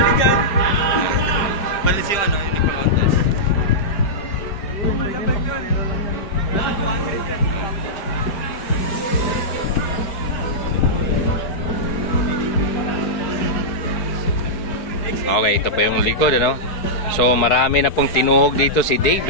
dyan. Balis yung ano, yung nagpa-contest. Okay, ito pa yung likod, ano? So, marami na pong tinuhog dito si Dave,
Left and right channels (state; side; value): late; right; 4.7 ms